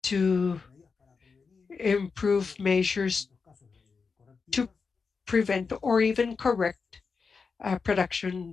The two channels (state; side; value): quieter; right; 5.0 dB